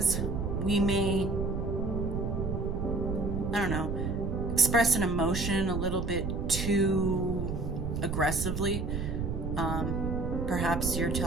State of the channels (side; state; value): right; noise; rumble, 2 dB below the sound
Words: we may, express an emotion a little bit too aggressively. Perhaps you're